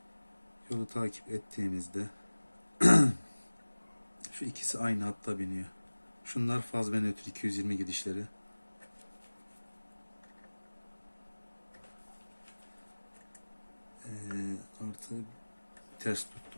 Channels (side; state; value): both; inverted; correlation -1.00